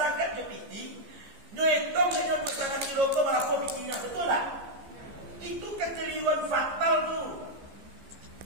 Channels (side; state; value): left; late; 15 ms